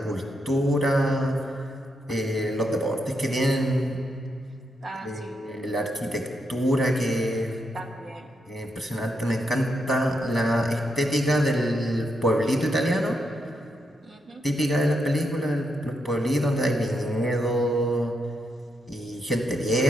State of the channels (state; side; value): normal; both; correlation 0.81